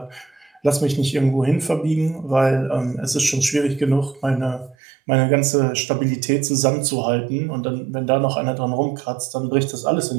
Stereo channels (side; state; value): left; drops out; at 4.8 s